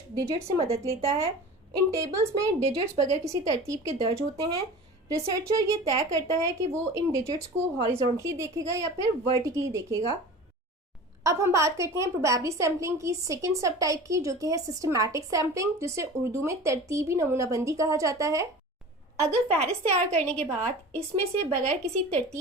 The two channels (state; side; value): normal; both; correlation 0.37